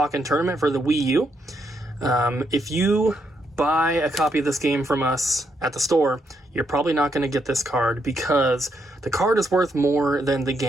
Tournament for the Wii U. If you buy a copy of this game from us at the store, you're probably not going to get this card because the card is worth more than the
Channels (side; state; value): both; normal; correlation 0.77